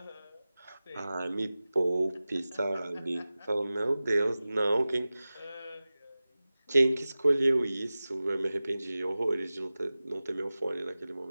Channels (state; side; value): inverted; both; correlation -0.97